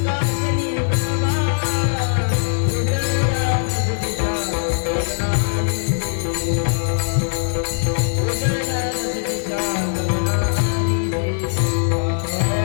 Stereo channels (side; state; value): right; silent; digital silence